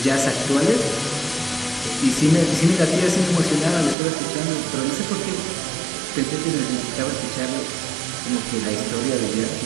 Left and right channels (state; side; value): drops out; left; at 4.0 s